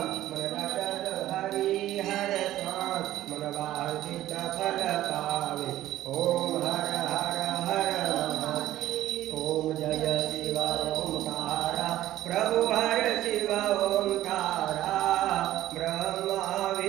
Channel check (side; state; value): left; quieter; 14.0 dB